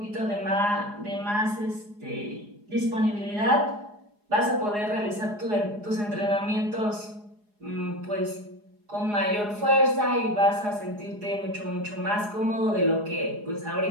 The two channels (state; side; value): late; left; 4.8 ms